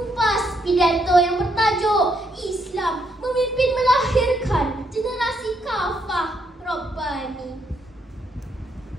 pidato yang bertajuk Islam Memimpin Melahirkan Generasi Kafah Rabbani.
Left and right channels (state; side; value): normal; both; correlation 0.75